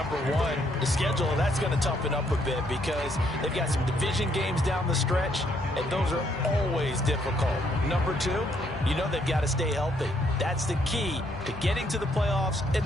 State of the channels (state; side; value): normal; both; correlation 0.70